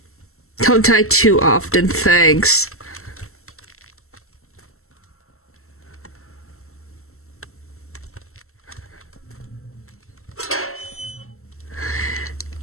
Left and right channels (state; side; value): late; right; 0.63 ms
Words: Don't die too often, thanks.